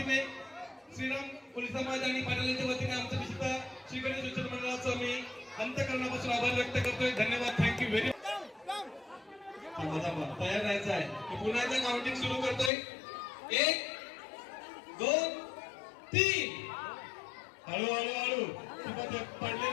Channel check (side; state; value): right; drops out; at 12.7 s